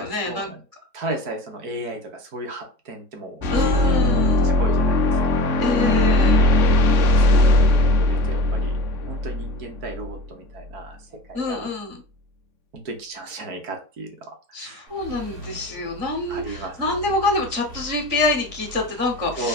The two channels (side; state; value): left; late; 4.5 ms